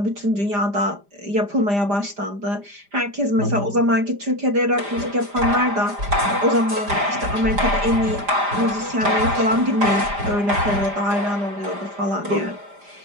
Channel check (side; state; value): left; late; 5.0 ms